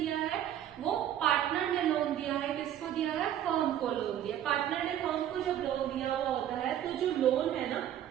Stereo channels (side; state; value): left; quieter; 10.9 dB